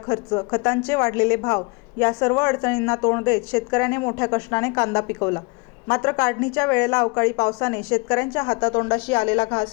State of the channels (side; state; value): right; quieter; 29.2 dB